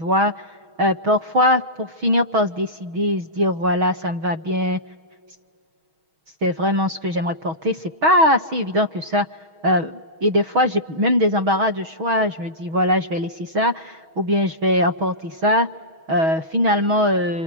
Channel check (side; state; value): left; late; 6.3 ms